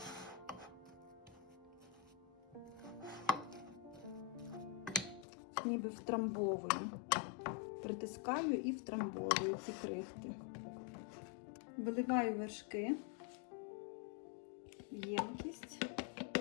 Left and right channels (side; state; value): right; drops out; at 5.2 s